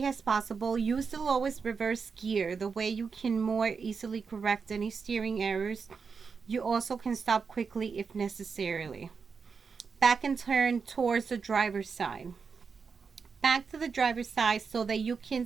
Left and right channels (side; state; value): left; quieter; 5.4 dB